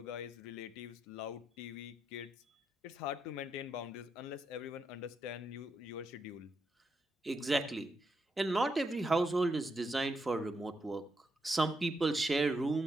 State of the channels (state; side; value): normal; both; correlation 0.81